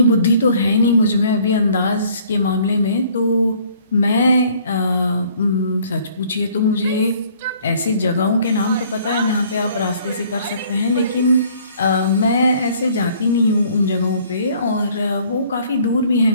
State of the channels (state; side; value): inverted; both; correlation -0.58